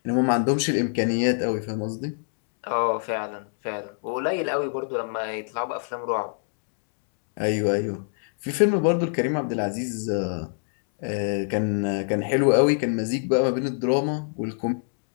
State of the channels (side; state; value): right; silent; digital silence